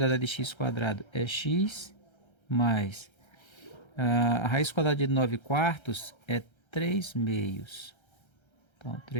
de x² é x, mais a raiz quadrada de 9 quartos é 3 meios. Então,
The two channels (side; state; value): right; late; 1.3 ms